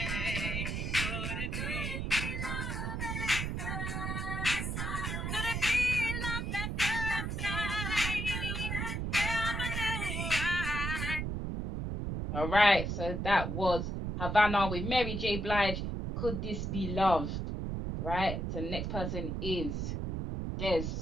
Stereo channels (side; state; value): right; noise; rumble, 2 dB below the sound